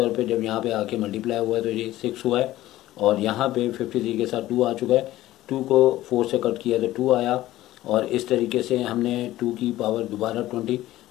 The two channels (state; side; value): quieter; right; 15.4 dB